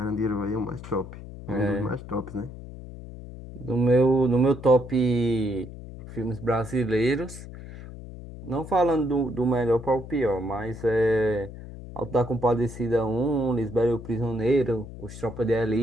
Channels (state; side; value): noise; left; hum, 13 dB below the sound